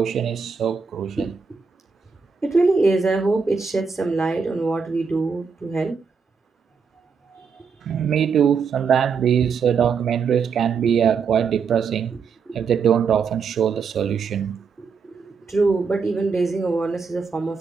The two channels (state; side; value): quieter; left; 5.7 dB